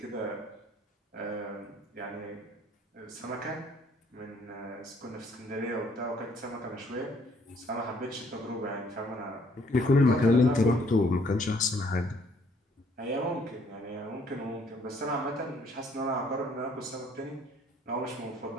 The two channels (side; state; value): both; normal; correlation 0.63